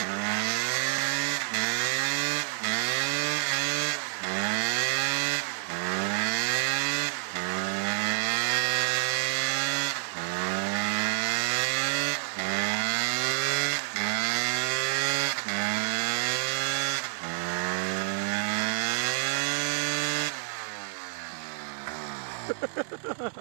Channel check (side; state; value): left; silent; digital silence